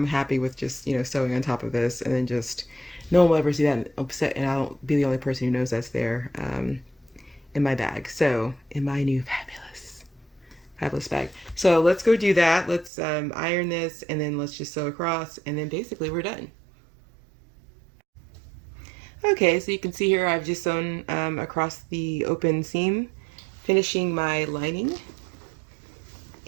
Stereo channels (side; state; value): left; drops out; at 12.9 s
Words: happy with just, sewing on top of this, and then just, no one will ever see that upset, and I'll be the only person who knows that's there in my bag. So, in my new fabulous bag. So let's go do that. Let's iron this, and then let's just sew across, and then basically we're done. Okay, so you can see here I've just sewn across the open seam, finishing my lining.